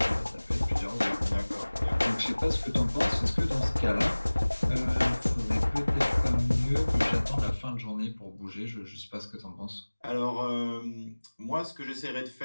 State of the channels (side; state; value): both; inverted; correlation -1.00